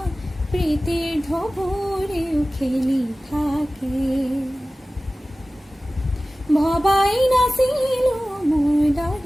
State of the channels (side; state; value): both; normal; correlation 0.97